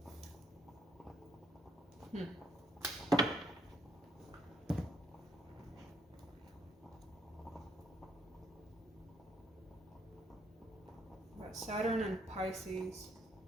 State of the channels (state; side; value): normal; both; correlation 0.68